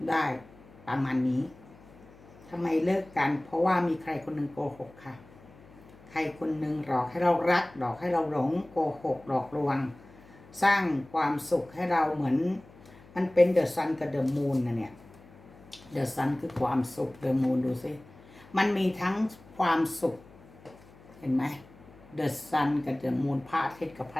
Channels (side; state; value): left; noise; hum, 23 dB below the sound